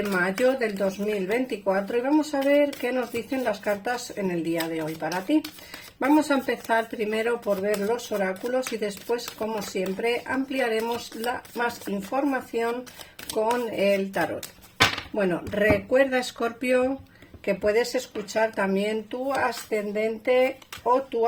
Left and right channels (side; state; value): both; identical; correlation 1.00